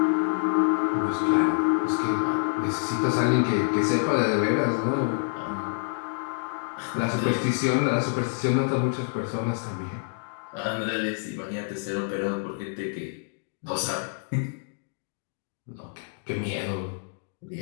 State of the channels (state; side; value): silent; right; digital silence